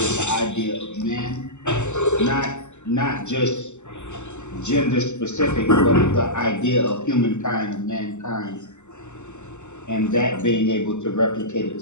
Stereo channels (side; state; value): right; late; 0.83 ms